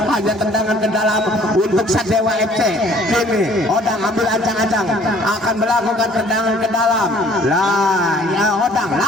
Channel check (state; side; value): normal; both; correlation 0.56